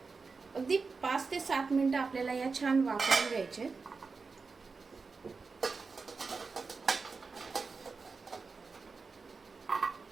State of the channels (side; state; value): left; quieter; 4.5 dB